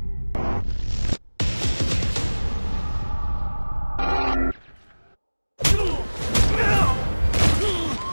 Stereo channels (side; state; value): both; inverted; correlation -1.00